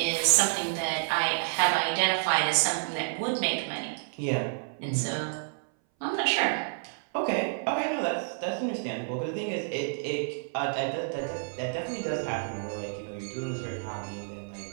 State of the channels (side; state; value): left; silent; 58 dB below the other